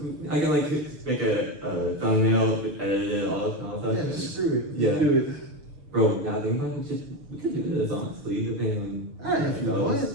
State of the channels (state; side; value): late; left; 6.7 ms